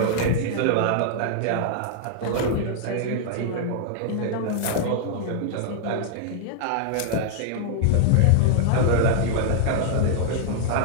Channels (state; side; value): different; both; correlation -0.01